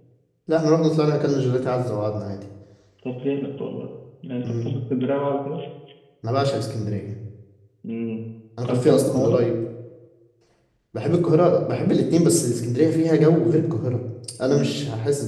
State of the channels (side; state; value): both; identical; correlation 1.00